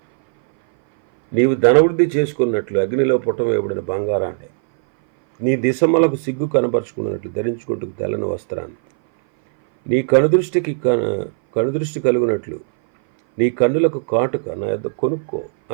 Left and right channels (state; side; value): silent; left; 60 dB below the other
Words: నీవు ధనవృద్ధి చేసుకున్నట్లు అగ్నిలో పుట్టవేయబడిన బంగారాన్ని, నీ దిశమలకు సిగ్గు కనపరుచుకున్నట్లు ధరించుకుంటూ తెల్లని వస్త్రాన్ని, నీ కనుదృష్టి కలుగునట్లు నీ కన్నులకు కాటుక నా యొద్ద కొనుక్కో